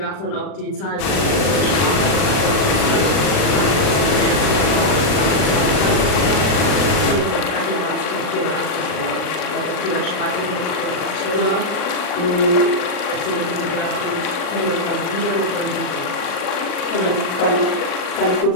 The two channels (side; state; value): right; late; 39 ms